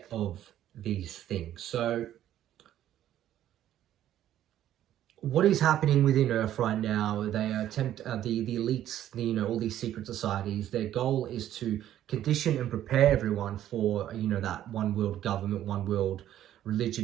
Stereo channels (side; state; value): left; quieter; 11.9 dB